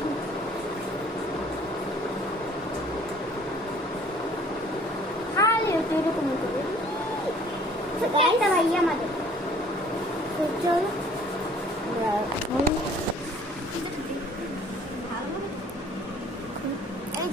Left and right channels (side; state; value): both; normal; correlation 0.54